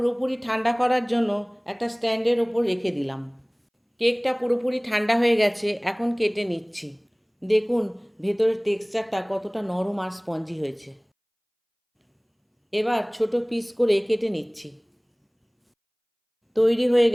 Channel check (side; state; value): both; identical; correlation 1.00